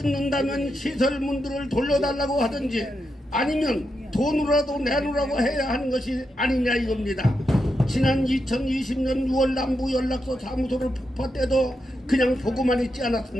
시설문들을 돌려달라고 하든지 아니면 돈으로라도 내놓으라고 해야 하는 것이 아니냐 이겁니다. 지난 2020년 6월 남부 연락소 사무소를 폭파 때도 그냥 보고만 있지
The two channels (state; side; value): normal; both; correlation 0.85